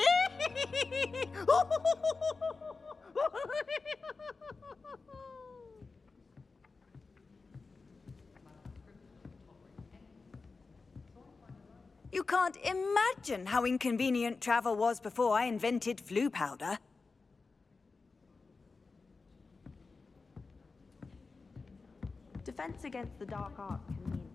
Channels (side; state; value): right; quieter; 4.2 dB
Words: You can't imagine how inconvenient travel was before I invented flu powder. Defense against the dark arts can be